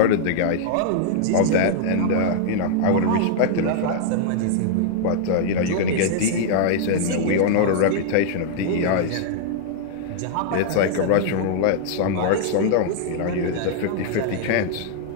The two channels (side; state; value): both; different; correlation -0.01